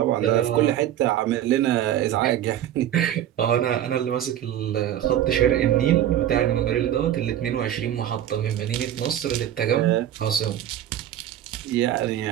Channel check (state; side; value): quieter; left; 11.4 dB